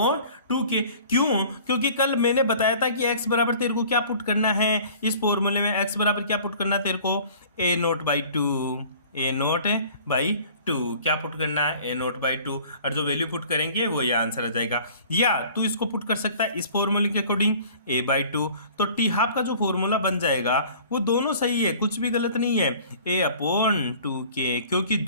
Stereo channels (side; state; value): both; inverted; correlation -0.49